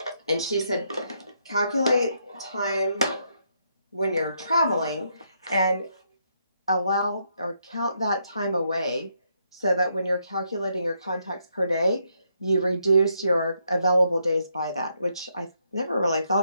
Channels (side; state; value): both; inverted; correlation -0.76